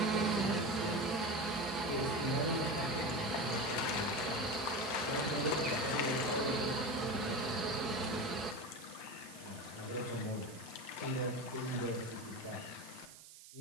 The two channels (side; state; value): right; noise; hiss, 17 dB below the sound